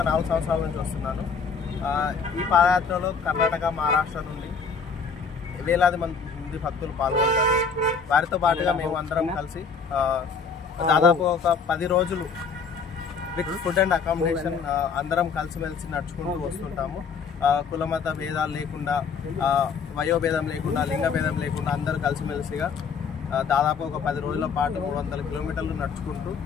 4 సంవత్సరాల నుంచి వస్తున్నాను. ఈ పాదయాత్రలో కర్ణాటక, మహారాష్ట్ర నుండి వేలాది మంది భక్తులు పాల్గొంటారు. వారితో పాటుగా మేము అందరం కలిసి దాదాపు ఒక 10 రోజులు విత్ ఫుడ్ అండ్ అకామిడేషన్ అందరం కలిసిమెలిసి నడుచుకుంటూ వస్తుంటాము. కులమత భేదాలు లేకుండా, వయోభేదం లేకుండా, లింగ భేదం లేకుండా అందరూ కలిసిమెలిసిగా దాదాపు ఒక 10 రోజుల పాటు 300 కిలోమీటర్లు నడుచుకుంటూ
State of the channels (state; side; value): quieter; right; 5.6 dB